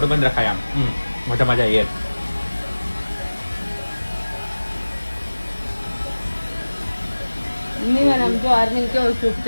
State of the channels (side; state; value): both; inverted; correlation -1.00